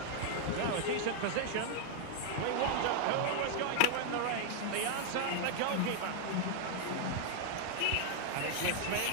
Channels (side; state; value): both; different; correlation 0.00